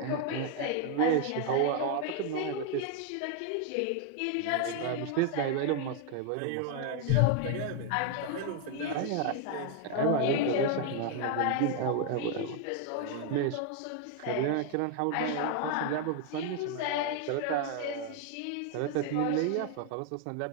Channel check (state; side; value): different; both; correlation 0.01